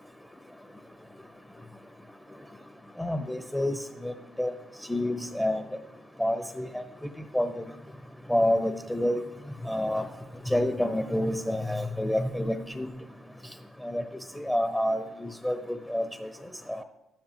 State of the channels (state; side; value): normal; both; correlation 0.96